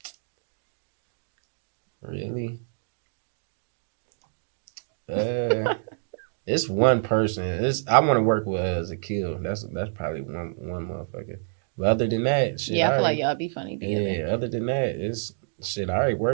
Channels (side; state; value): left; silent; digital silence